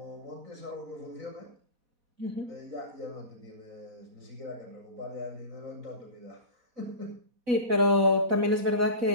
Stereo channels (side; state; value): left; late; 4.0 ms